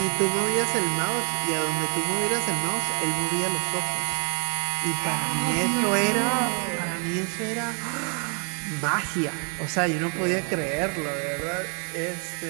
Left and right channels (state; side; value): quieter; left; 38.2 dB